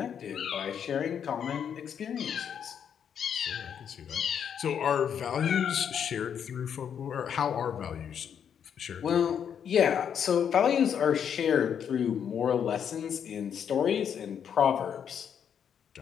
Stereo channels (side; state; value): right; quieter; 8.2 dB